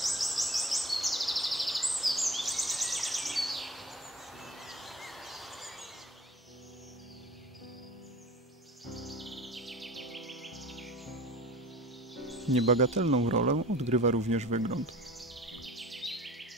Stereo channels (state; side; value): normal; both; correlation 0.41